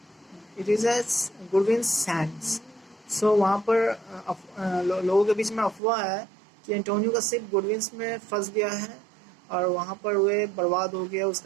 It is a good winds sands. So वहाँ पर लोगों के बीच में अफवाह है कि Antonio का ship good winds में फंस गया है और वहाँ पर वे बर्बाद हो गया,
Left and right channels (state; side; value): drops out; left; at 5.8 s